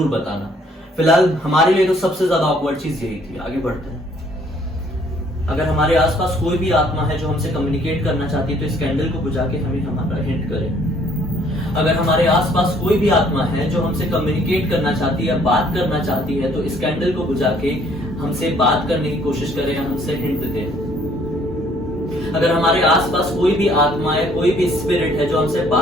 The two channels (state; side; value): normal; both; correlation 0.62